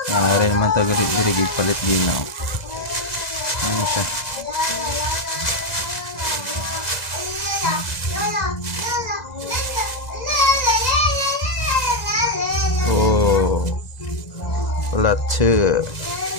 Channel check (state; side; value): late; right; 2.0 ms